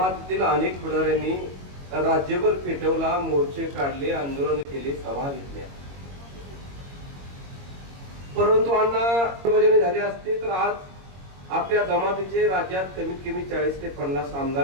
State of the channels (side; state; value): left; late; 22 ms